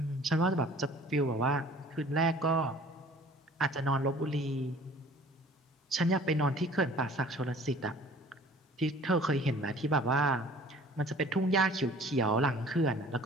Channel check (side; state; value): both; normal; correlation 0.50